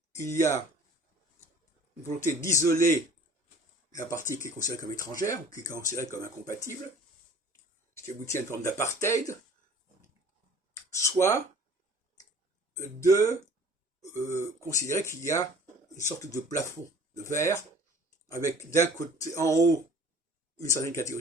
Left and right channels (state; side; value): normal; both; correlation 0.48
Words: il y a une volonté d'isoler la partie qui est considérée comme étrangère, ou qui est considérée comme incompatible, ce qui aboutit à une forme d'apartheid, soit de considérer qu'il y a une sorte de plafond de verre, avec d'un côté, en haut, une certaine catégorie